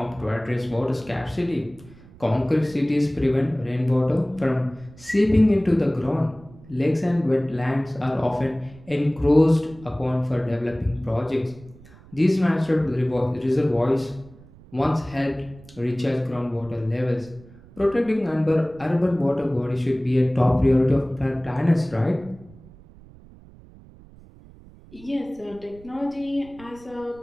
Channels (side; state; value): right; noise; rumble, 22 dB below the sound